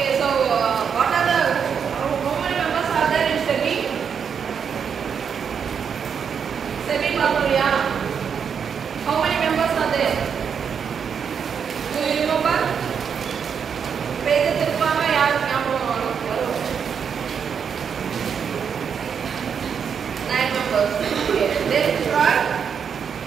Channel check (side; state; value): left; quieter; 7.0 dB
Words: so what are the how many members are there in SEBI? SEBI Papuria. How many members are there? Do you remember? Page திருப்பாம யார் ஞாபகம் வரும்? 9 members. Okay, let's try.